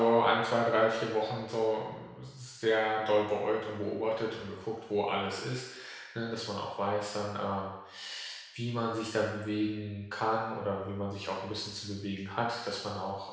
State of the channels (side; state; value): both; identical; correlation 1.00